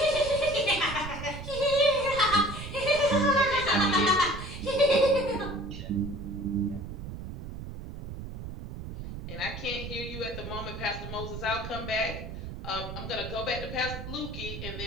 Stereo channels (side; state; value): right; noise; rumble, 9 dB below the sound